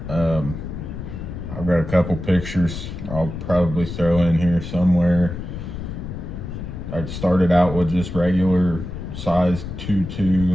I've got a couple pictures I'll probably throw in here somewhere. I started out with just regular size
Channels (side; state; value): left; noise; rumble, 8 dB below the sound